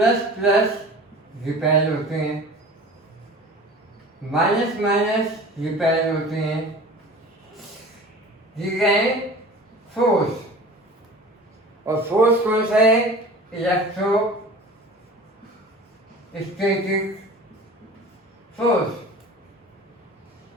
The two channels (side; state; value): both; normal; correlation 0.40